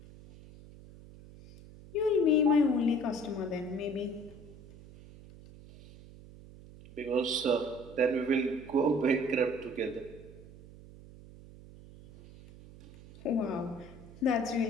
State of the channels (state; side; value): noise; right; hum, 19 dB below the sound